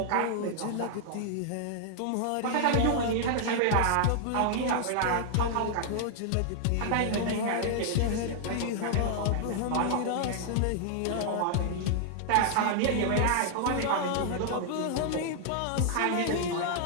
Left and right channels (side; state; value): both; different; correlation 0.00